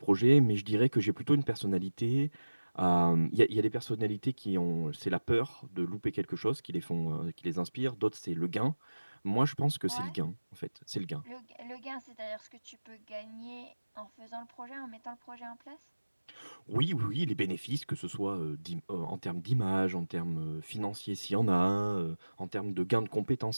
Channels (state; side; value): inverted; both; correlation -1.00